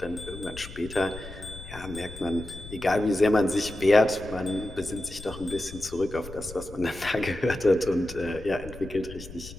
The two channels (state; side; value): noise; left; rumble, 14 dB below the sound